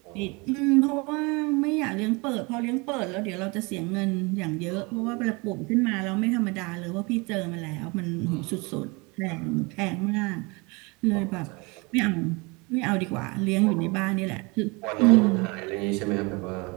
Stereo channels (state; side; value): quieter; left; 27.7 dB